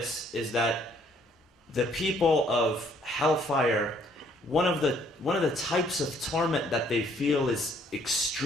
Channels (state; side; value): normal; both; correlation 0.64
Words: is that the people of hellfire, one of the types of torment that they feel is